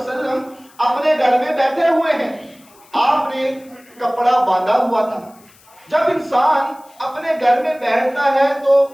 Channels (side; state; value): left; noise; hiss, 28 dB below the sound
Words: اپنے گھر میں بیٹھے ہوئے ہیں، آپ نے کپڑا باندھا ہوا تھا۔ جب انسان اپنے گھر میں بیٹھتا ہے تو